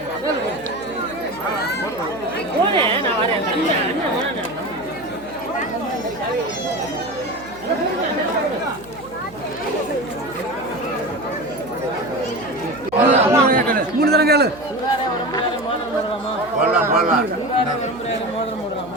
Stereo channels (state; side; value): noise; right; hum, 21 dB below the sound